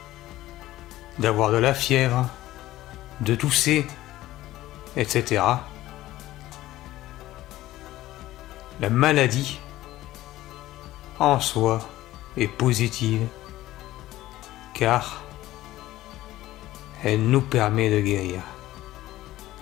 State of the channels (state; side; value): quieter; right; 15.7 dB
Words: d'avoir de la fièvre, de tousser, etc. La maladie en soi est positive car elle nous permet de guérir.